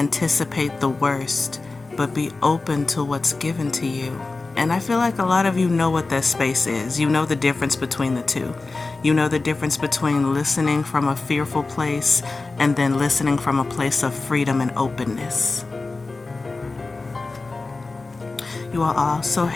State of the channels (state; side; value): quieter; right; 3.6 dB